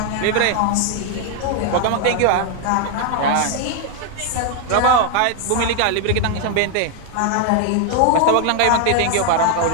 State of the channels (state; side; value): different; both; correlation 0.00